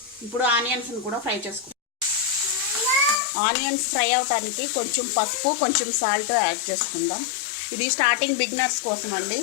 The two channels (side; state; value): right; drops out; at 3.2 s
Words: ఇప్పుడు ఆనియన్స్ని కూడా ఫ్రై చేసుకోవాలి. ఆనియన్స్ ఫ్రై అవడానికి కొంచెం పసుపు, కొంచెం సాల్ట్ యాడ్ చేసుకుందాం. ఇది స్టార్టింగ్ బిగినర్స్ కోసం అండి,